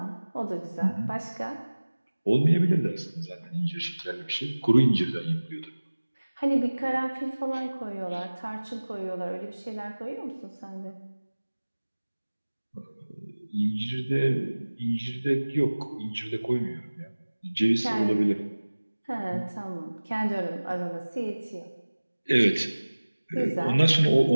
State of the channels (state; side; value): inverted; both; correlation -1.00